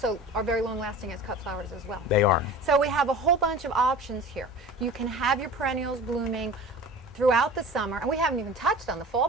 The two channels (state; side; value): normal; both; correlation 0.38